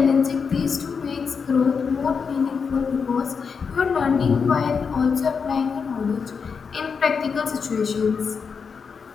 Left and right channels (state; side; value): quieter; right; 5.8 dB